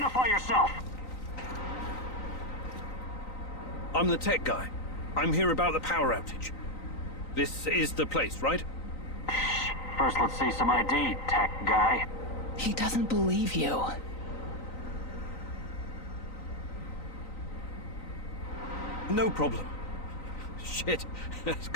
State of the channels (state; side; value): late; right; 3.9 ms